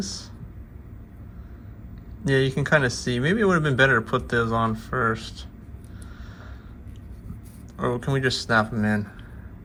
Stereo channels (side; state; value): both; identical; correlation 1.00